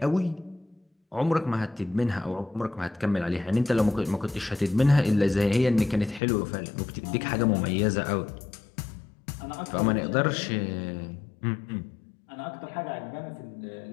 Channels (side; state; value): right; drops out; at 6.2 s